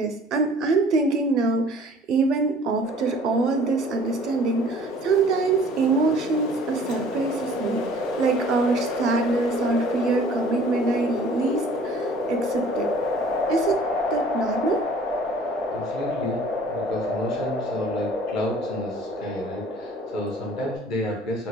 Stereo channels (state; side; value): normal; both; correlation 0.51